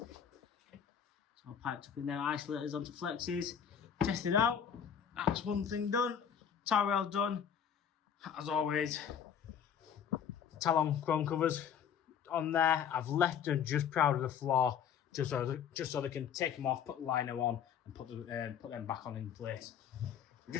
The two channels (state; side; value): quieter; right; 8.1 dB